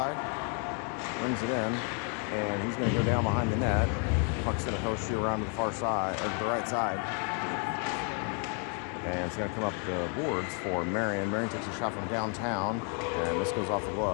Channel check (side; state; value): right; quieter; 39.6 dB